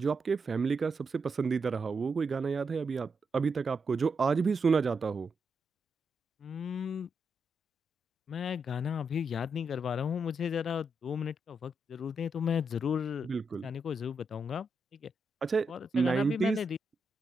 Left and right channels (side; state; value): both; normal; correlation 0.83